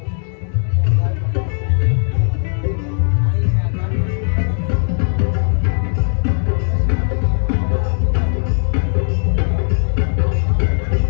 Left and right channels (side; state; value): right; silent; 68 dB below the other